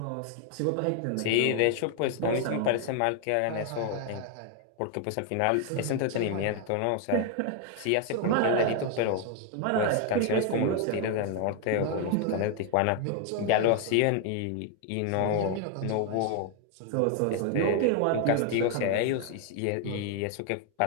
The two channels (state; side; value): different; both; correlation 0.00